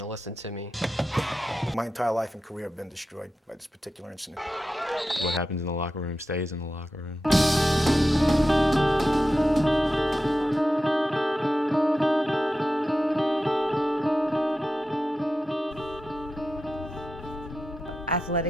to listen to me. My entire life and career have been destroyed by this particular incident. What happens in the locker room stays in the locker room.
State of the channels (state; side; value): normal; both; correlation 0.91